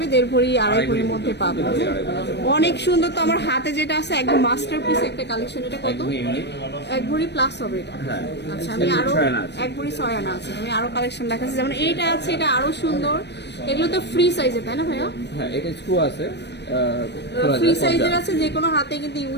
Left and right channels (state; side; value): late; right; 0.50 ms